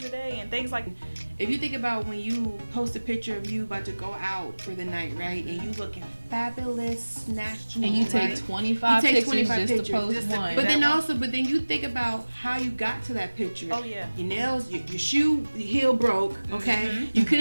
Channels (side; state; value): both; inverted; correlation -1.00